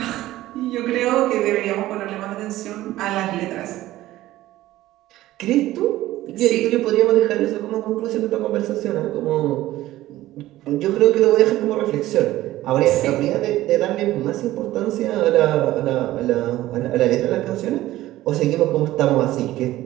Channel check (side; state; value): left; quieter; 15.6 dB